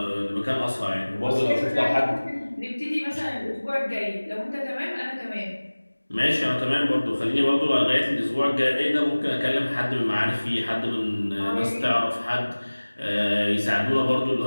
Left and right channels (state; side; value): inverted; both; correlation -1.00